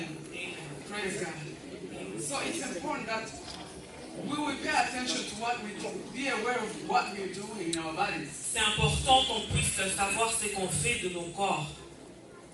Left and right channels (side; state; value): both; identical; correlation 1.00